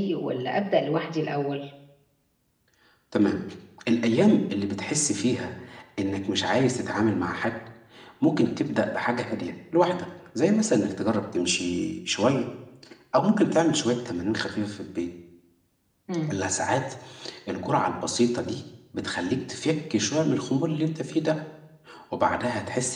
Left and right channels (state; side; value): identical; both; correlation 1.00